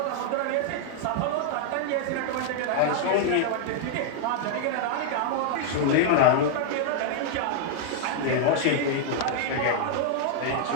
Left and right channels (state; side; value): different; both; correlation -0.01